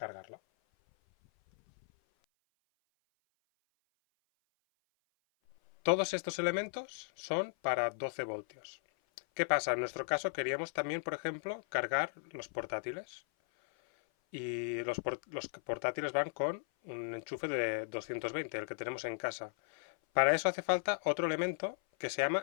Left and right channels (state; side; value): silent; right; 54 dB below the other